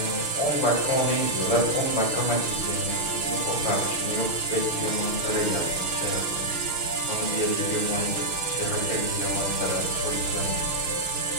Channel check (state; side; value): late; right; 6.4 ms